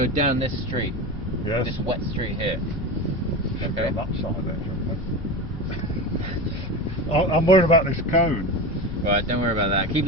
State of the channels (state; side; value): normal; both; correlation 0.25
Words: down this street. Yes. This wet street here. Should be Okay. on that side there, shouldn't we? I'm worried about this cone. Right, don't worry about that. Keep